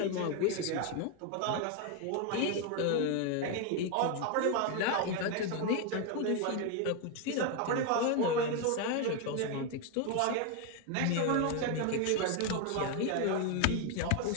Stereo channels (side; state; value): both; different; correlation 0.01